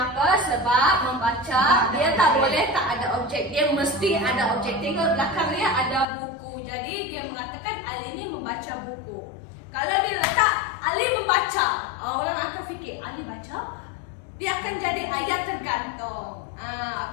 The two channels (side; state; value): right; drops out; at 6.1 s